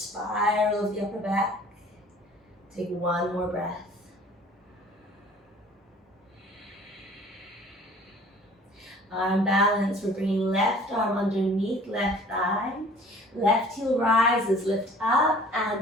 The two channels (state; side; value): normal; both; correlation 0.50